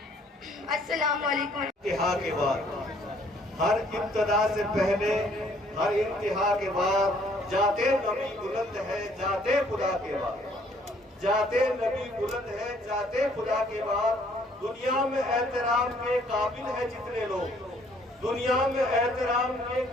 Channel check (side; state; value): both; normal; correlation 0.62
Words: السلام علیکم۔ انتہا کے بعد، ہر ابتدا سے پہلے، ہر انتہا کے بعد جاتے نبی بلند ہے جاتے خدا کے بعد، جاتے نبی بلند ہے جاتے خدا کے بعد۔ دنیا میں احترام کے قابل ہے جتنے لوگ، دنیا میں احترام کے